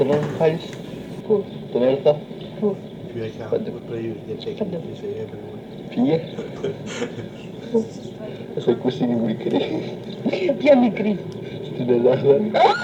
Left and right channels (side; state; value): both; identical; correlation 1.00